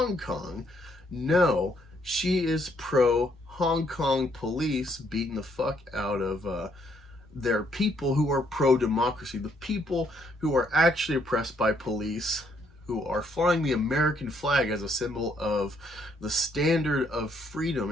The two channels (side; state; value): both; normal; correlation 0.70